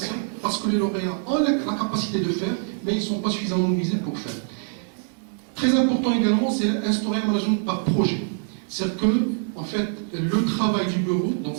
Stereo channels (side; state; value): left; silent; digital silence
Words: parce que les lauréats ont la capacité de faire, mais ils ne sont pas suffisamment mobilisés pour faire. Très important également, c'est instaurer un management par projet. C'est-à-dire que, en fait, le travail du bureau, dans